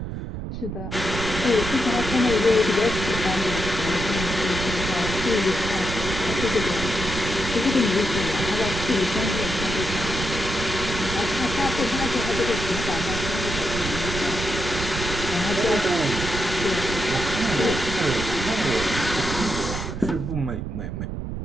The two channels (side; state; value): right; noise; rumble, 5 dB below the sound